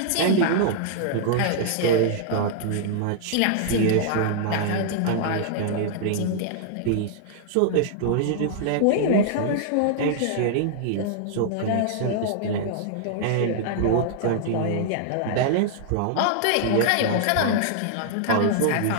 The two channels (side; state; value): both; different; correlation -0.01